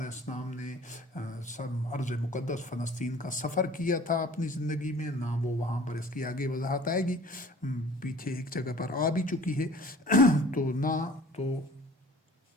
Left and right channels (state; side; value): normal; both; correlation 0.48